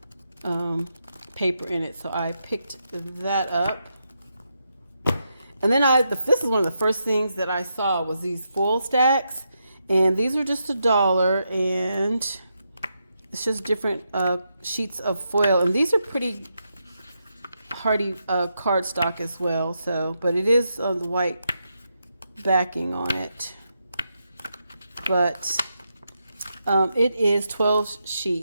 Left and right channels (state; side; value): inverted; both; correlation -0.83